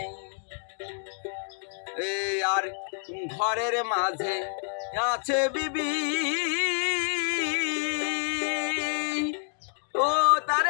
আর ঘরের মাঝে আছে বিবি, ও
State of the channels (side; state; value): right; silent; digital silence